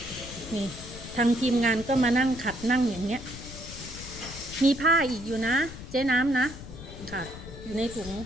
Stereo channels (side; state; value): left; noise; rumble, 13 dB below the sound